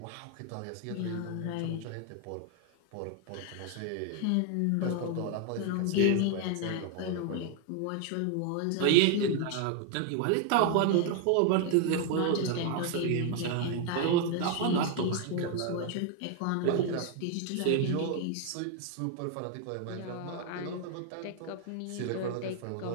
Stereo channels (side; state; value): both; different; correlation 0.01